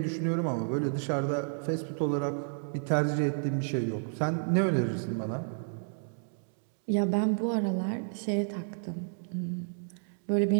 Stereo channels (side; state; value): left; silent; digital silence